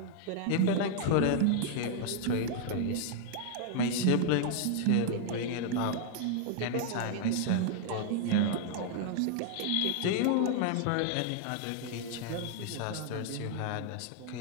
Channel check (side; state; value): both; different; correlation 0.00